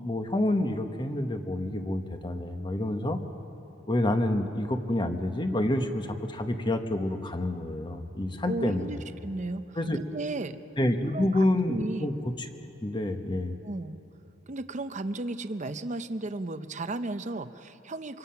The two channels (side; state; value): both; normal; correlation 0.81